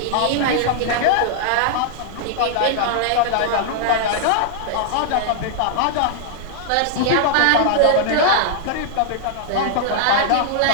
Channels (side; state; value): both; different; correlation -0.01